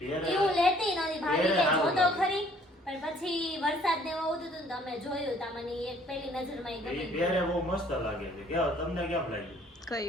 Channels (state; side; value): normal; both; correlation 0.59